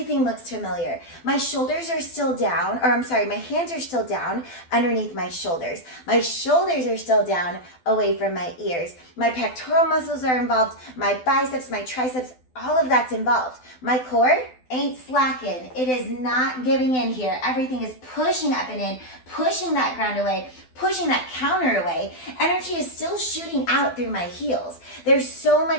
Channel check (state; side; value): late; right; 12 ms